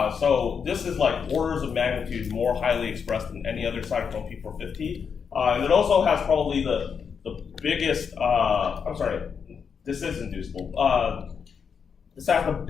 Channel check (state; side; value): quieter; right; 6.5 dB